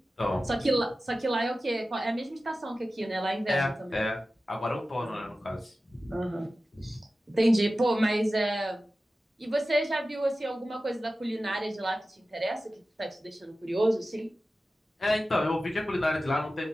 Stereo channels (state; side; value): normal; both; correlation 0.95